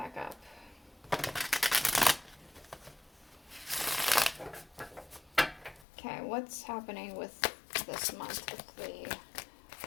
up. Okay, what's happening with this month with the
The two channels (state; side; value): drops out; right; at 5.9 s